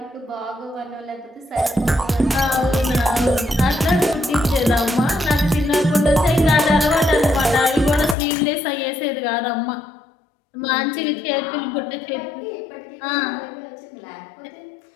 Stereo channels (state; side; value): drops out; right; at 8.2 s